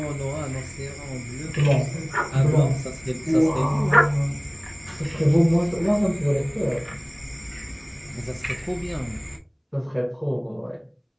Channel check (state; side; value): identical; both; correlation 1.00